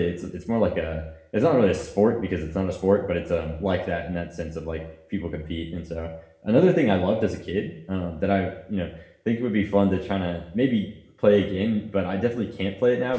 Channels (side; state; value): both; identical; correlation 1.00